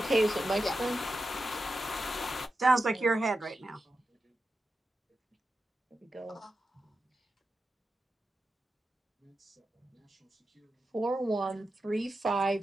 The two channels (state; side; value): normal; both; correlation 0.90